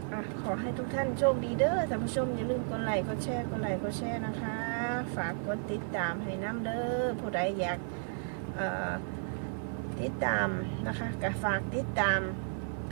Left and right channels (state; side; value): silent; left; 56 dB below the other